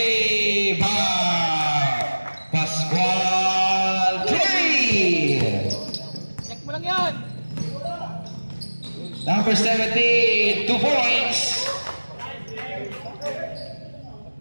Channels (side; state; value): both; inverted; correlation -1.00